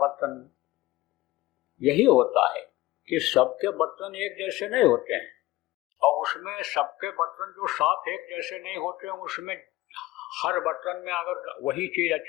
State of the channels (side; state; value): right; quieter; 18.1 dB